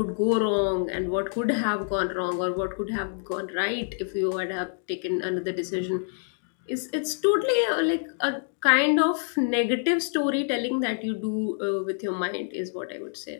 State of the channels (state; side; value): silent; right; digital silence